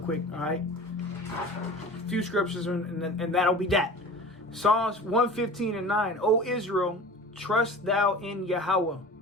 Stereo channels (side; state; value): both; normal; correlation 0.38